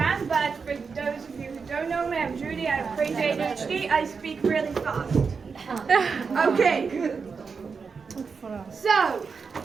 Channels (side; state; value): left; quieter; 5.3 dB